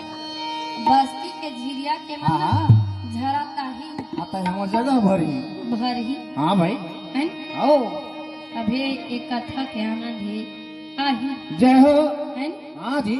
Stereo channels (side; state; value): both; identical; correlation 1.00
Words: बस्ती के झिरिया के हाँ मन हाँ झरा ताही आता है हमार जगह भरी भर ही हाँ भाई है। आओ अभी एक कथा के आनंद है आही जय हो है हाँ जी